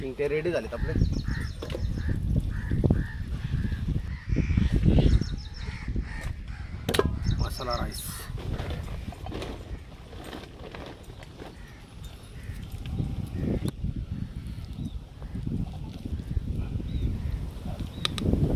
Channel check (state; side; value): identical; both; correlation 1.00